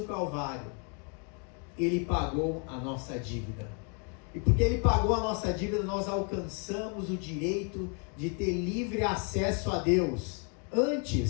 Calvário, ele pagou a nossa dívida. E porque ele pagou a nossa dívida, nós alcançamos o direito de ter livre acesso a Deus.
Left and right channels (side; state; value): right; quieter; 38.7 dB